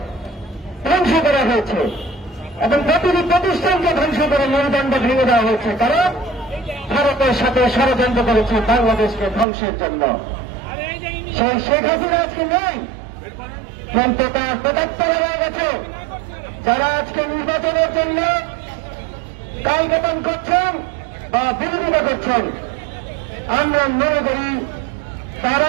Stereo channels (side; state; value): left; drops out; at 9.5 s